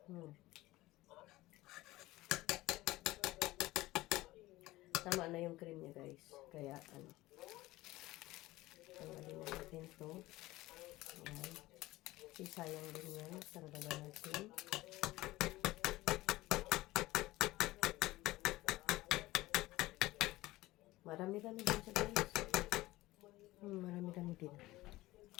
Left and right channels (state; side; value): quieter; right; 18.3 dB